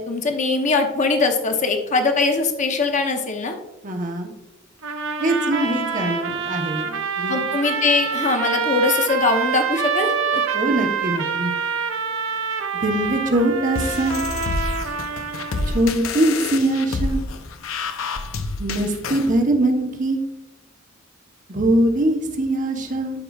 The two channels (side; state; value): both; normal; correlation 0.40